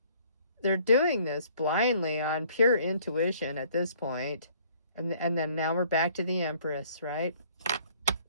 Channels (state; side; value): inverted; both; correlation -0.58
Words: They're doing this blindly on pure intuition at this point. And then now we're back to the Empress, right?